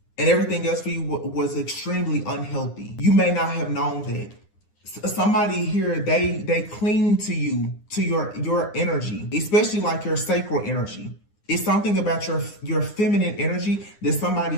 and everything else for you was extremely unhealthy. You may not have known that. Somebody here, they cling to you, to your energy, especially like your sacral energy. It's something about your feminine energy that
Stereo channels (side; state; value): right; late; 9.8 ms